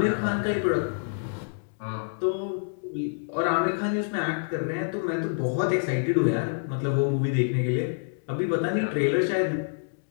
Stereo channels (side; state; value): right; silent; digital silence